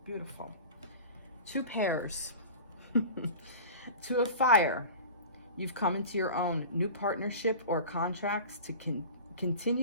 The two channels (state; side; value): inverted; both; correlation -0.37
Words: Beautiful. 2 pairs. 2 of fire. You've come into your own new partnership or contracts to